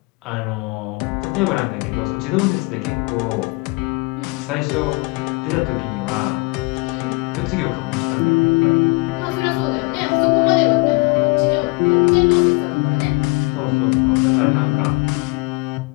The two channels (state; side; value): quieter; right; 26.4 dB